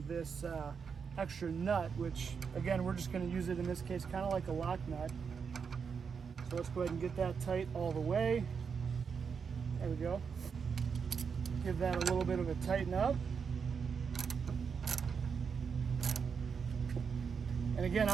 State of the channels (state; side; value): quieter; left; 6.1 dB